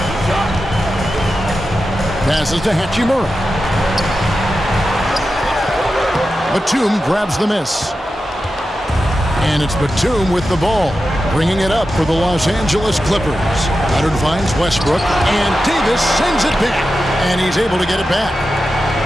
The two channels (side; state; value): both; normal; correlation 0.91